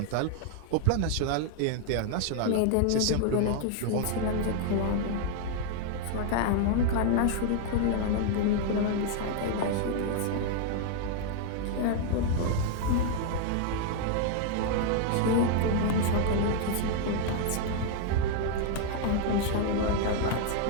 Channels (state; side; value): different; both; correlation 0.00